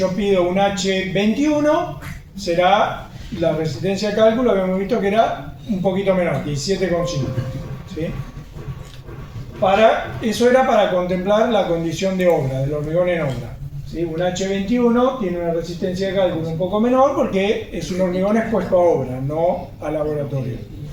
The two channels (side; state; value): both; identical; correlation 1.00